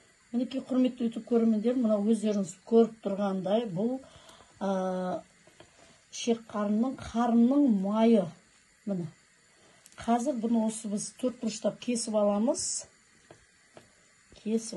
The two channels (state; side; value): identical; both; correlation 1.00